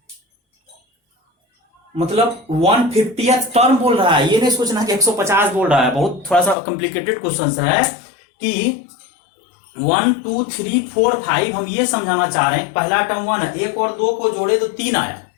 मतलब 1/50th टर्म बोल रहा है, ये नहीं सोचना कि 150 बोल रहा है। बहुत थोड़ा सा कॉम्प्लिकेटेड क्वेश्चन है कि 1 2 3 4 5 हम ये समझाना चाह रहे हैं। पहला टर्म 1 है, 1 और 2 को जोड़े तो 3 आया,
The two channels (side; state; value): right; drops out; at 6.6 s